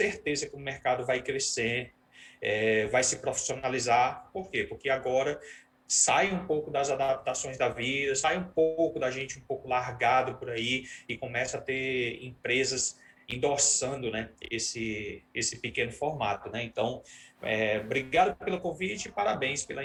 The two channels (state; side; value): identical; both; correlation 1.00